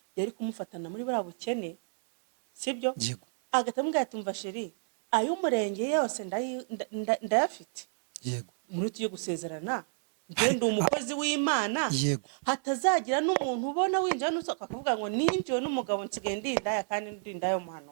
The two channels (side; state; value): left; silent; 58 dB below the other